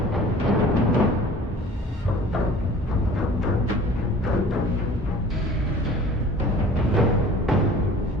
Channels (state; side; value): normal; both; correlation 0.46